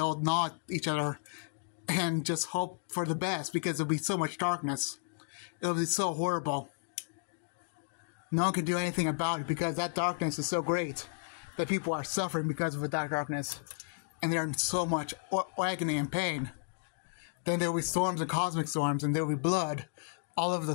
gnaw at each other and just hope for the best because there'll be so much darkness. It'll be so horrible. No one can do anything about it because that darkness is so great that people are suffering because of that darkness. And they're in so much agony and pain. Then there will be storms and cosmic storms, and there will be blood all over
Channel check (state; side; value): silent; right; digital silence